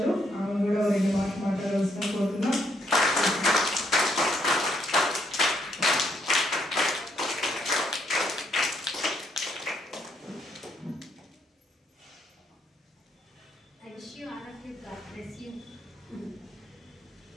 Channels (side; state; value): both; normal; correlation 0.73